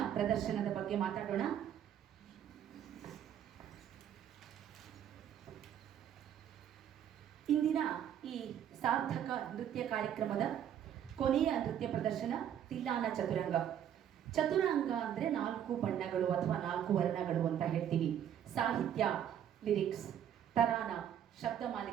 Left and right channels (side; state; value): left; quieter; 9.8 dB